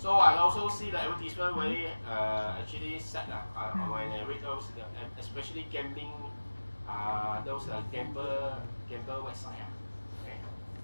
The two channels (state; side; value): inverted; both; correlation -1.00